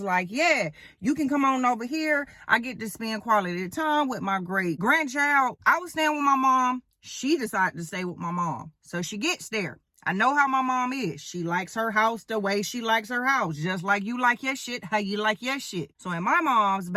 like, yeah, you can come on over here. I get to spend quality time with my great grandchild. I was staying with my mom. She decided to stay with my mom. So she gets there. I know how my mom is. She likes her house the way she likes her house. Just like you like your shit, how you like your shit. So in my mom's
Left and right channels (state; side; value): identical; both; correlation 1.00